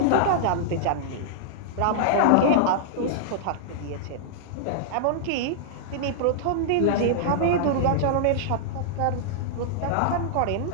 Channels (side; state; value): both; different; correlation -0.01